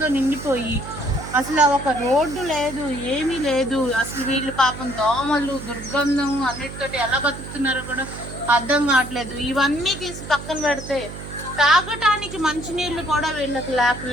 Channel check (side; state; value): right; noise; hum, 11 dB below the sound